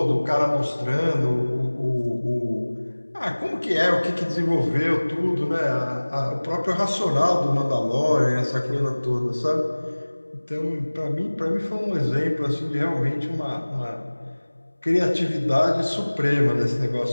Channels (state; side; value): inverted; both; correlation -1.00